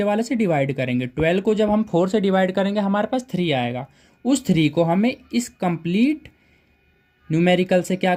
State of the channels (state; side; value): identical; both; correlation 1.00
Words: वाले से डिवाइड करेंगे। 12 को जब हम 4 से डिवाइड करेंगे हमारे पास 3 आएगा। उस 3 को हमें इस कंप्लीट न्यूमेरिकल से क्या